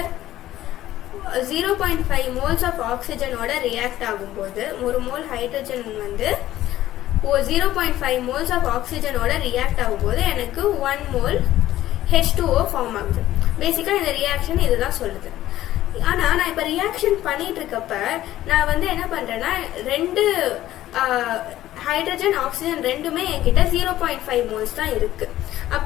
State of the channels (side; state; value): right; quieter; 14.1 dB